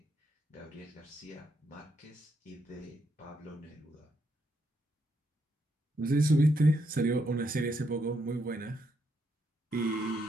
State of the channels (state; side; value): normal; both; correlation 0.78